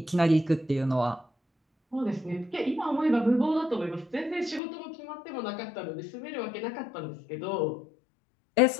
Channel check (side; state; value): right; drops out; at 4.6 s